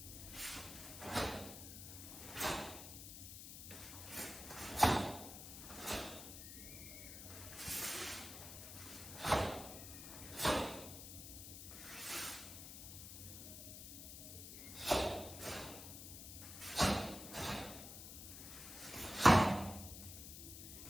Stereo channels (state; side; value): noise; left; hiss, 11 dB below the sound